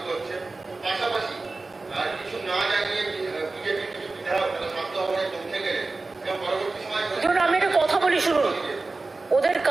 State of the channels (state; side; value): quieter; left; 3.5 dB